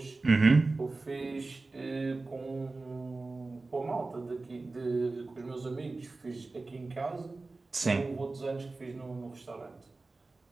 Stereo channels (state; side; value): quieter; left; 3.5 dB